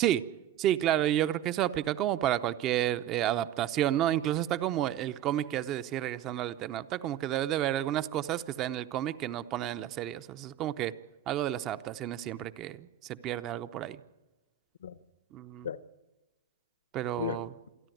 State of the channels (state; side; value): quieter; left; 11.0 dB